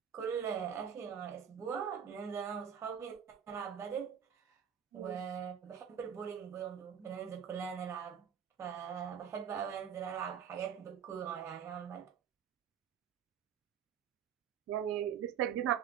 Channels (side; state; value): left; quieter; 8.3 dB